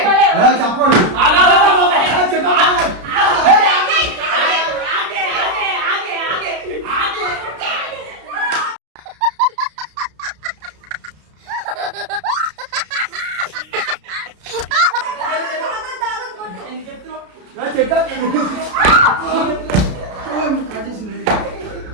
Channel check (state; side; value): late; left; 33 ms